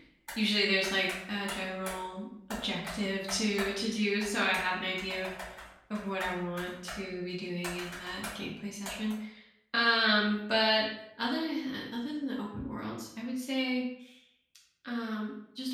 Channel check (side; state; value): both; identical; correlation 1.00